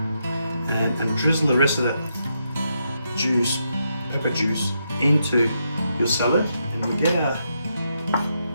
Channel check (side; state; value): both; inverted; correlation -0.81